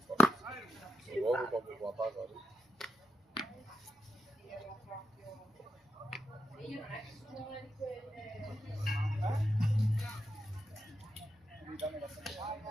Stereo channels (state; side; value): normal; both; correlation 0.85